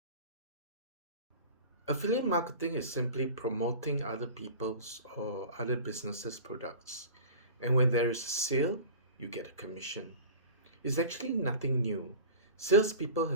Affiliate marketing is simply promoting other people's or other businesses' products. And when there is a sale, you get a commission. It's actually nothing new. Salespeople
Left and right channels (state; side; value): inverted; both; correlation -0.37